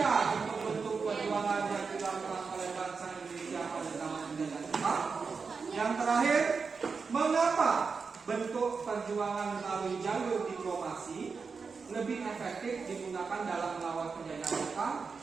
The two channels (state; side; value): quieter; left; 5.0 dB